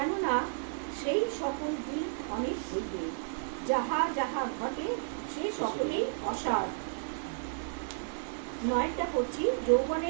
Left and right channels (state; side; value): silent; left; 56 dB below the other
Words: সেই সকল দিন অনেক হইবে। যাহা যাহা ঘটে সে সকলেই অসার। 9টা পড়ছি।